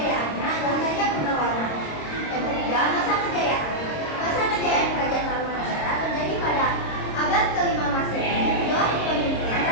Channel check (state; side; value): late; right; 26 ms